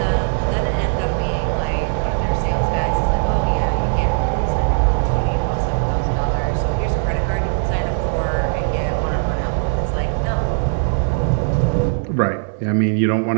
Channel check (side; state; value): left; silent; digital silence